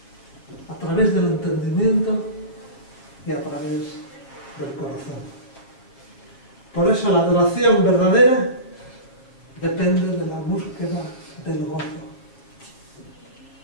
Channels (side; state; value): right; late; 7.5 ms